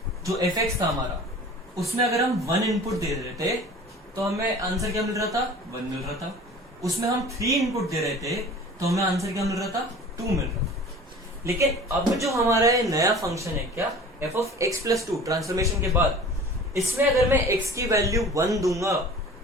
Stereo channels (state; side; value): normal; both; correlation 0.43